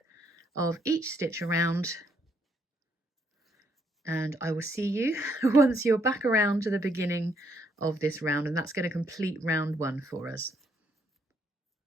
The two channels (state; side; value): normal; both; correlation 0.72